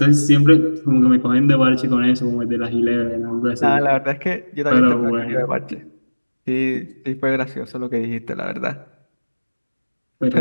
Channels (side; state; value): both; inverted; correlation -1.00